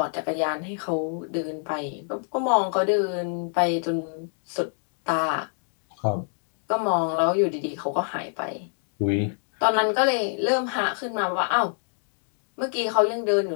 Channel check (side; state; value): right; silent; 61 dB below the other